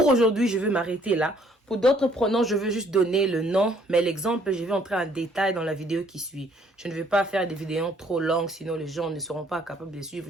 aujourd'hui, je vais m'arrêter là. Pour d'autres pronoms, je veux juste donner le nom, mais l'exemple, je vais entrer en détail dans la vidéo qui suit. Je ne vais pas faire des vidéos trop longues, sinon les gens ne seront pas capables de suivre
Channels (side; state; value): both; normal; correlation 0.63